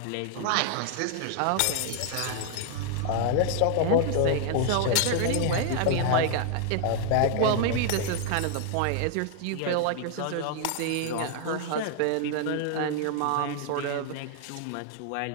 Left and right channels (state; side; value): different; both; correlation 0.00